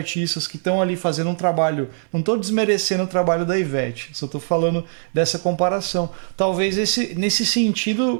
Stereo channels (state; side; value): silent; left; digital silence